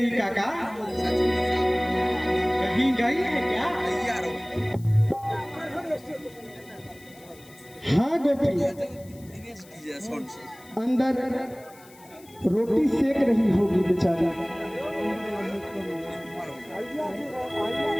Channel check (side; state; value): left; noise; hiss, 24 dB below the sound